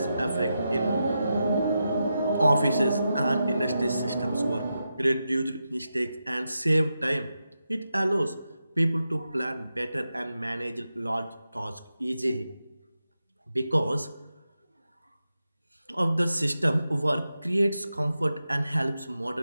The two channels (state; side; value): inverted; both; correlation -0.88